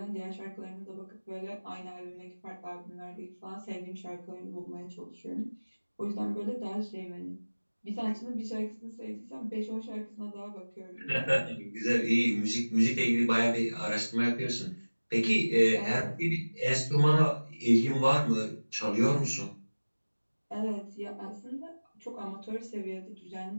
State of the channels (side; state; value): both; inverted; correlation -1.00